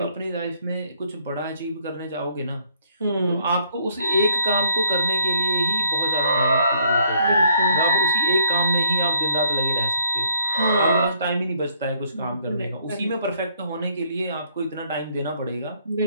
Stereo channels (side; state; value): both; inverted; correlation -0.64